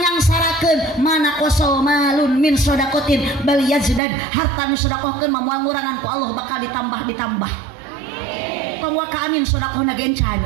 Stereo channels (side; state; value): left; drops out; at 4.0 s